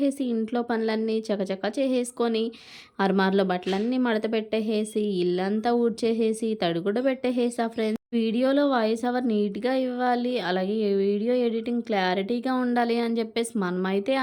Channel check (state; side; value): identical; both; correlation 1.00